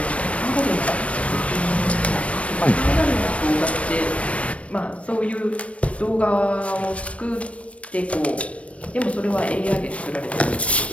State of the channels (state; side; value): late; right; 0.063 ms